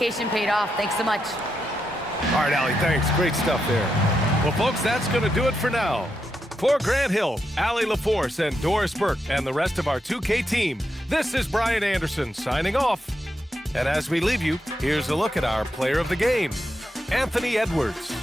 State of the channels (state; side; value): normal; both; correlation 0.84